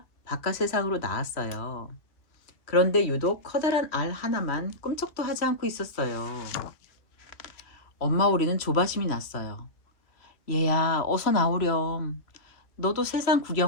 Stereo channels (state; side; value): late; right; 2.5 ms